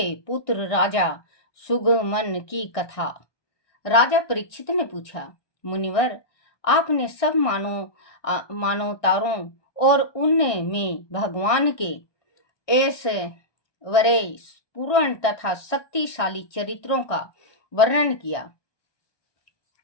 पुत्र राजा सुगमन की कथा। राजा परीक्षित ने पूछा, मुनिवर, आपने सब मानवतारों और उनमें भगवान के ऐश्वर्य पूर्ण तथा शक्तिशाली चरित्रों का वर्णन किया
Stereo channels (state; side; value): late; right; 1.6 ms